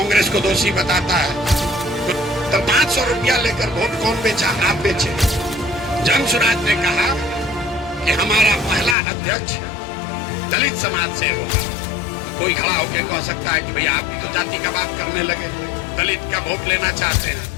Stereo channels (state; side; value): drops out; right; at 9.0 s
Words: को दोषी बताता है। तो 500 रुपया लेकर वोट कौन बेचा? आप बेचे। जनसुराज ने कहा कि हमारा पहला अध्यक्ष दलित समाज से होगा। कोई खड़ा होकर कह सकता है कि भैया आप तो जाति का बात करने लगे, दलित का वोट लेना चाहते